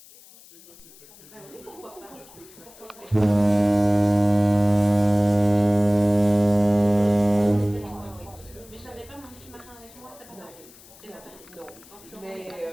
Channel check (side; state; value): left; noise; hiss, 23 dB below the sound